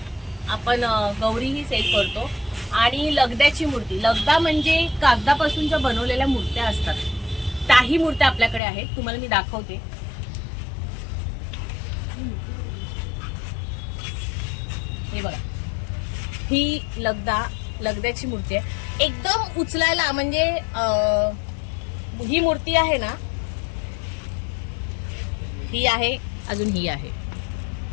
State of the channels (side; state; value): right; drops out; at 8.6 s